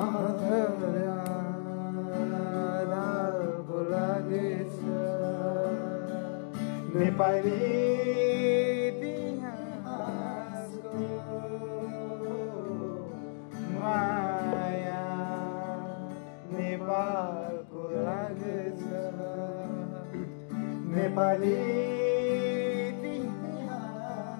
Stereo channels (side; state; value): right; silent; digital silence